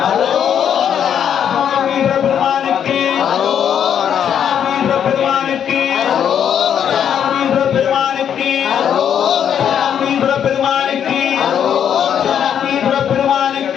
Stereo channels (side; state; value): right; quieter; 8.8 dB